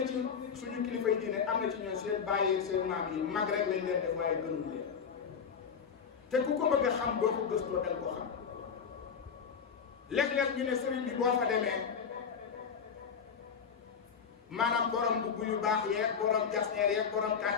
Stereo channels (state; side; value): quieter; right; 6.6 dB